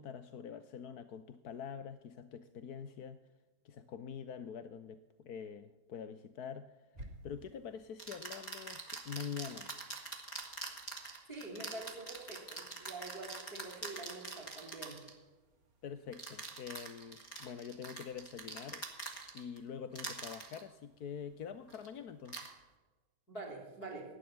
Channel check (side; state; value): right; late; 4.6 ms